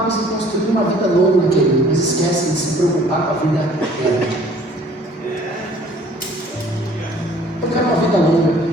em construir uma vida longa, querido, mas esquecem de se preocupar com a vida eterna. Eu quero uma vida longa,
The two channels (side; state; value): both; normal; correlation 0.54